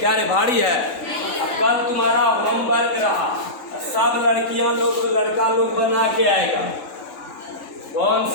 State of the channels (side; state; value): right; late; 3.8 ms